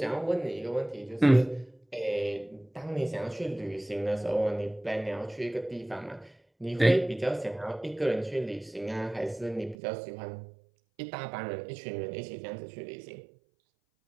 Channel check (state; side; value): drops out; left; at 9.8 s